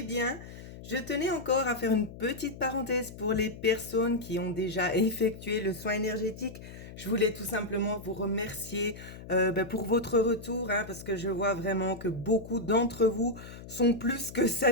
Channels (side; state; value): left; noise; hum, 14 dB below the sound